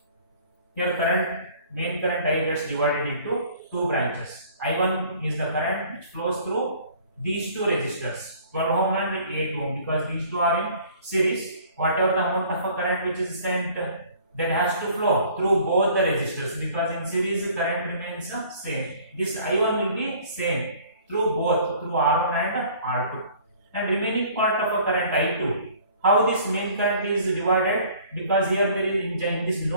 Here main current I gets divided into 2 branches. I1 is the current which flows through these 2 resistors, 12 ohm and 8 ohm, because these 2 are in series. whatever the amount of a current which is sent, that has to flow through both the resistors, because in series the current remains same. This I1 will be same through both, through R1 and R2. And remaining part of a current I2, how this main current is divided, because here there is in this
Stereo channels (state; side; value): inverted; both; correlation -0.52